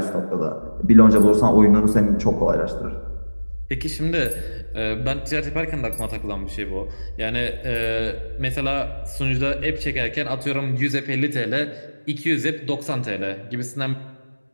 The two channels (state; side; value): inverted; both; correlation -1.00